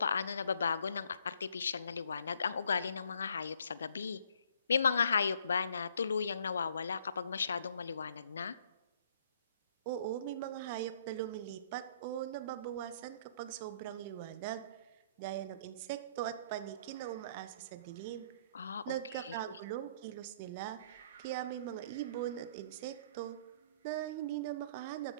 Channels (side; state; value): both; inverted; correlation -0.63